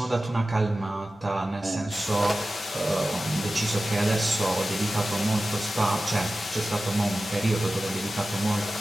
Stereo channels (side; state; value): both; normal; correlation 0.94